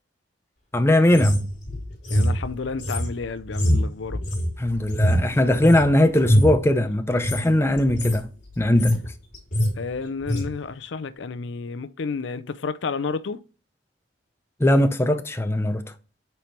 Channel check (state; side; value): normal; both; correlation 0.85